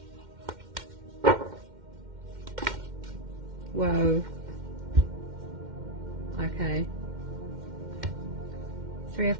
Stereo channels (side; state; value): left; late; 2.1 ms